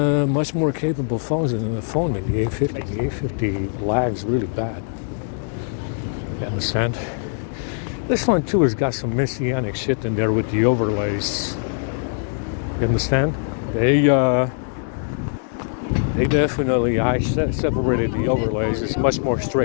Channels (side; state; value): right; silent; digital silence